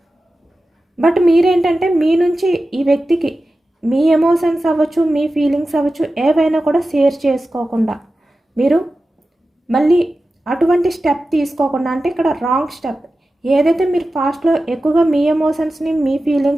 బట్ మీరేంటంటే మీ నుంచి ఈ వ్యక్తికి మీ ఎమోషన్స్ అవ్వచ్చు, మీ ఫీలింగ్స్ అవ్వచ్చు, ఏవైనా కూడా షేర్ చేసుకోకుండా మీరు మళ్ళీ అటువంటి స్టెప్ తీసుకోకుండా, అంటే ఇక్కడ రాంగ్ స్టెప్ ఏదైతే మీరు ఫాస్ట్లో ఎక్కువగా మీ ఎమోషన్స్ని, మీ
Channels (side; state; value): both; normal; correlation 0.94